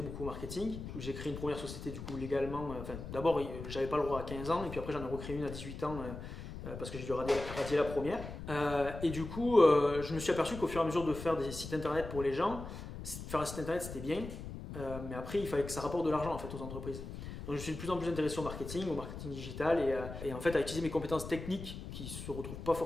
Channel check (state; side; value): noise; left; rumble, 9 dB below the sound